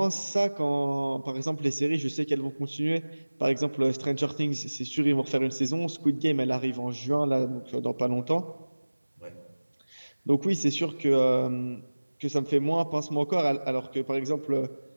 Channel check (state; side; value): inverted; both; correlation -1.00